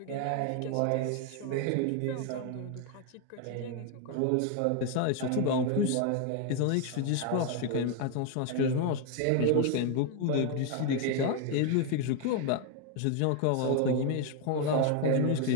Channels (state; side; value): different; both; correlation 0.01